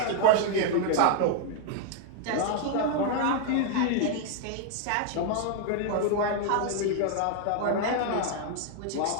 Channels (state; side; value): different; both; correlation 0.00